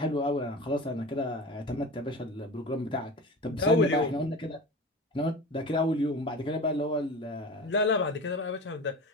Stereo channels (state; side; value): normal; both; correlation 0.32